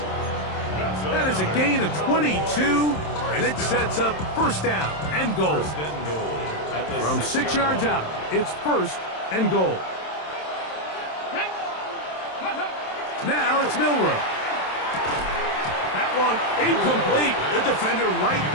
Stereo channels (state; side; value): late; right; 27 ms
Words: That is a gain of 22, and it sets up first down and goal. From 6 yards out, it's first and goal. Now it's Milrow. That one incomplete. The defender right